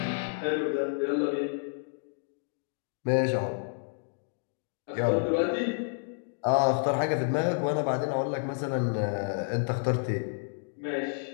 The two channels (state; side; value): silent; right; digital silence